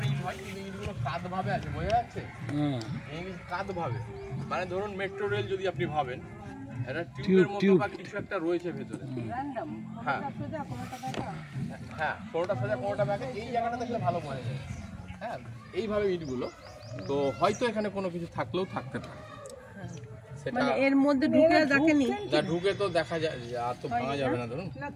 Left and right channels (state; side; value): identical; both; correlation 1.00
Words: ইট হয়, কিন্তু ইটগুলো কাঁধ ভাবে আছে, বোঝা যাচ্ছে? কাঁধ ভাবে, মানে ধরুন মেট্রো রেল যদি আপনি ভাবেন, একটা টিউবের মতো বা কিছু একটা রয়েছে ভেতরে। হ্যাঁ হ্যাঁ, কোনোটা সোজা কোনোটা ব্যাকে, এই জায়গাটা দেখলে ভালো বোঝা যায়। হ্যাঁ, এইভাবে ইটগুলো। তো হয়তো এখানে কোনো কিছু থাকলেও থাকতে পারে, সেটা এর মধ্যে ঢুকে দেখেনি। ঢুকে তো দেখা যায়, আর তো ভাঙা যাবে না ধরুন। না,